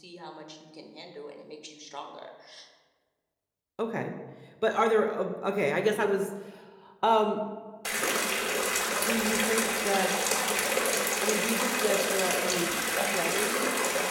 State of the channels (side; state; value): both; identical; correlation 1.00